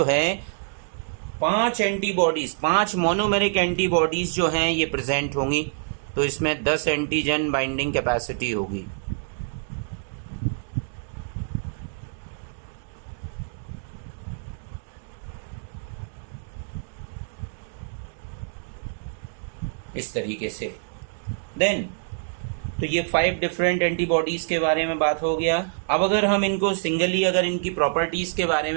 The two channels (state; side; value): silent; left; 61 dB below the other